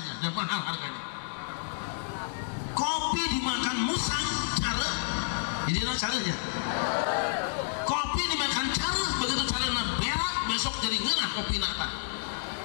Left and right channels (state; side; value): silent; right; digital silence